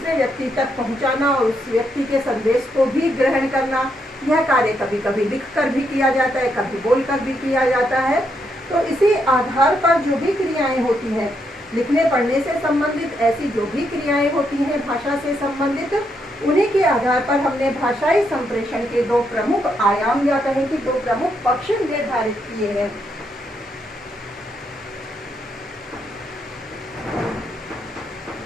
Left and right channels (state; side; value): normal; both; correlation 0.78